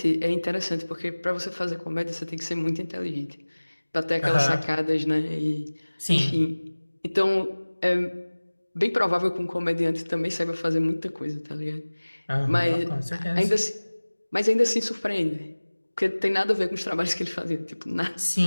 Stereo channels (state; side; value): inverted; both; correlation -1.00